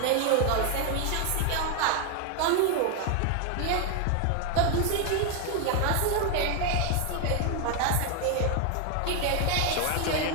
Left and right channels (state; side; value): different; both; correlation 0.01